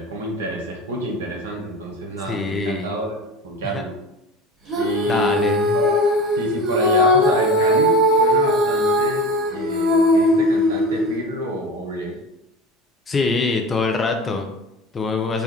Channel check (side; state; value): both; normal; correlation 0.31